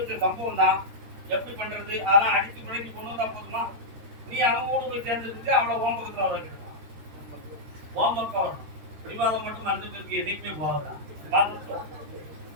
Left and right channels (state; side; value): late; left; 13 ms